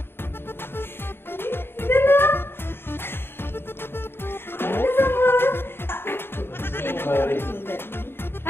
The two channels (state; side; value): late; right; 0.11 ms